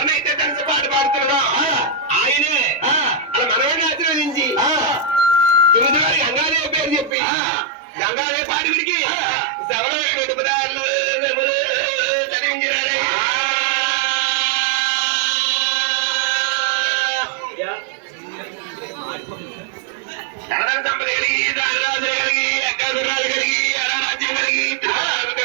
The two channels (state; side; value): drops out; left; at 7.1 s